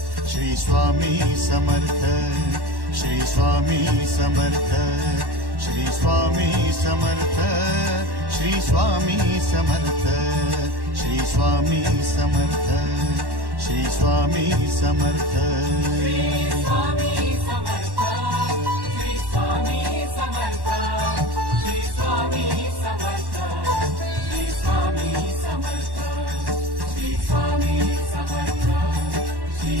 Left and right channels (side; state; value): left; late; 1.1 ms